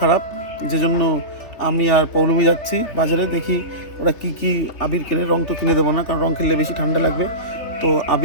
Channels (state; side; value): late; right; 3.3 ms